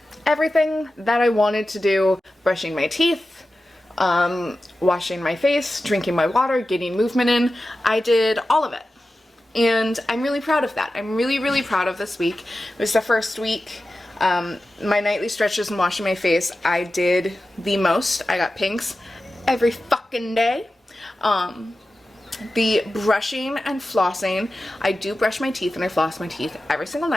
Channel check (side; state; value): both; normal; correlation 0.94